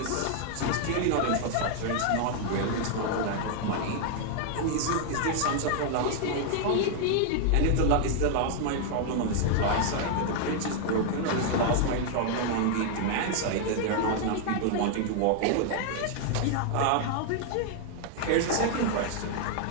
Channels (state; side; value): different; both; correlation 0.00